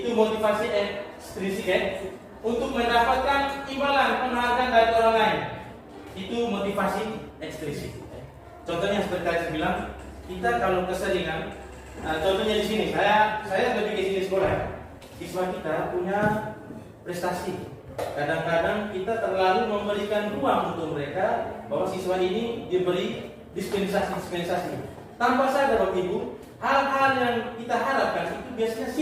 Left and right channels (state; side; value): identical; both; correlation 1.00